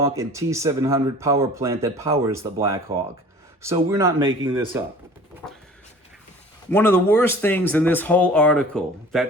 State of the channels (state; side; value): normal; both; correlation 0.45